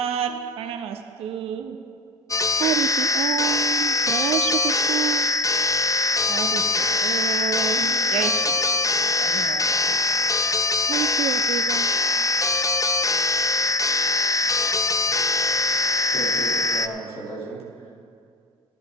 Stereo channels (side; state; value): both; normal; correlation 0.23